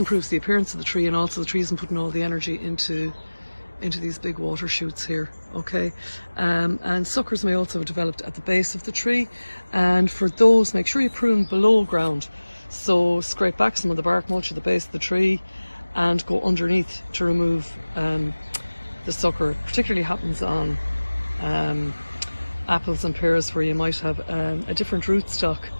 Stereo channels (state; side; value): inverted; both; correlation -1.00